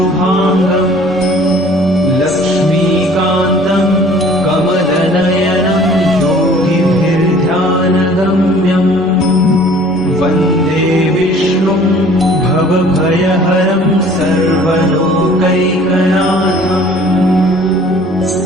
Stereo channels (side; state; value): both; normal; correlation 0.52